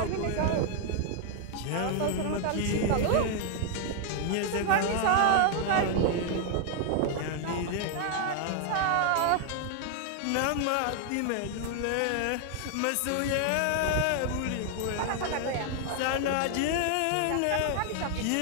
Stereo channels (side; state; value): both; different; correlation 0.00